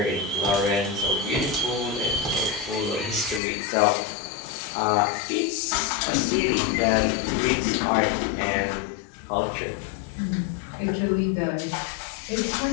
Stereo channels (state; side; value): drops out; right; at 3.4 s